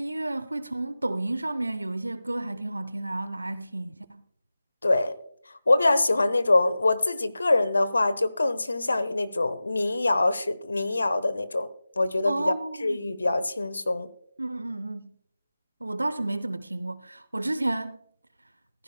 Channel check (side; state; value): both; inverted; correlation -0.95